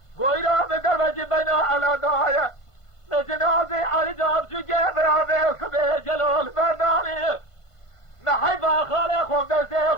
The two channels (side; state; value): right; late; 1.5 ms